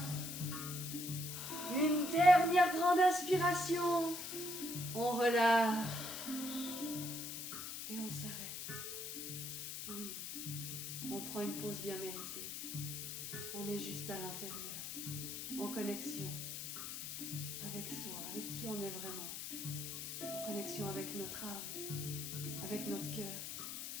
Une dernière grande inspiration. On relâche. Et on s'arrête. Oui, on prend une pause bien méritée. On est juste à l'intérieur, en connexion avec soi, avec qui on est vraiment. En connexion avec notre âme, avec notre cœur.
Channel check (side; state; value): left; noise; hiss, 6 dB below the sound